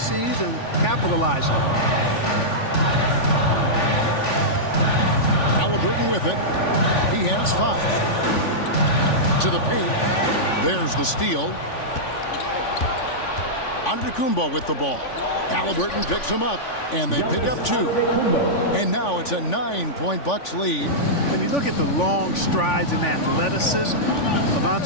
and capitalizing. Halliburton with it. He has 5. To the paint. There's the steal. Antetokounmpo with the ball. Halliburton picks him up, and they pick up 2. And now it's a 9-point Bucks lead. When you look at the long strides and athleticism of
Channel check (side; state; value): right; late; 3.5 ms